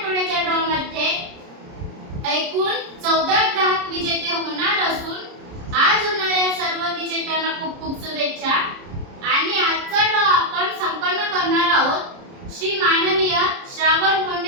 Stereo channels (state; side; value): late; left; 30 ms